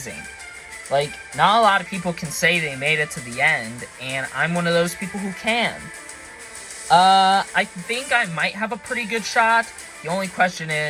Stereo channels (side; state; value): both; identical; correlation 1.00